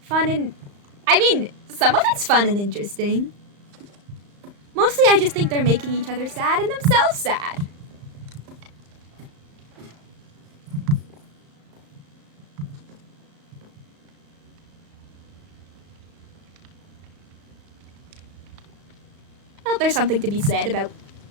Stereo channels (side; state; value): left; late; 35 ms